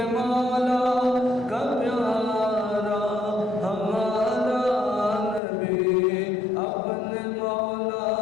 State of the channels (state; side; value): drops out; right; at 5.4 s